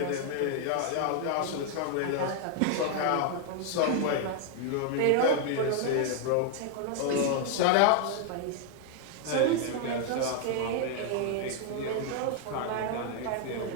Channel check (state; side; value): different; both; correlation 0.00